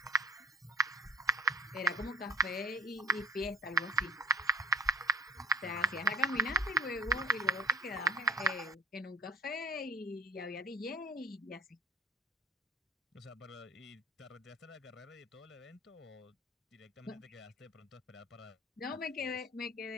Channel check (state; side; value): normal; both; correlation 0.39